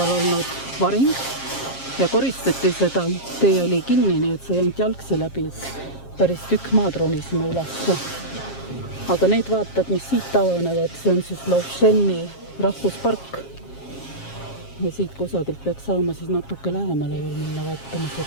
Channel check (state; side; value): late; right; 7.4 ms